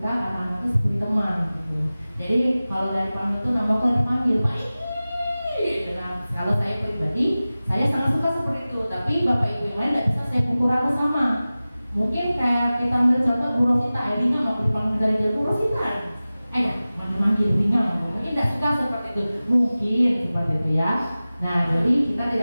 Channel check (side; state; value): both; inverted; correlation -0.97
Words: anak-anaknya seperti teman gitu. Jadi kalau dari panggil itu nama aku dipanggil Pak ini. Nah, kalau saya pribadi saya sangat suka seperti itu. Tapi Bapak Ibu yang lain tidak bisa saya pukul rata sama. Mungkin kayak kita ambil contoh Bu Rosita, Ringan nggak dipanggil dari dia Bu Rosita. Manggil ringan, mungkin tidak suka seperti itu. Mungkin seperti itu ya. Nah, jadi kita